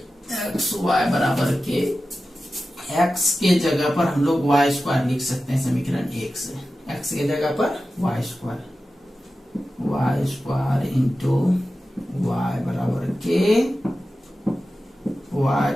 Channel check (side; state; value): both; normal; correlation 0.94